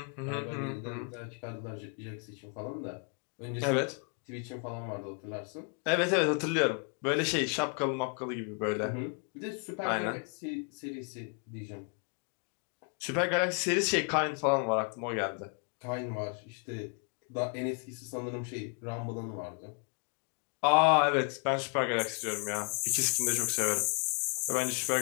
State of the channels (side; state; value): right; quieter; 39.3 dB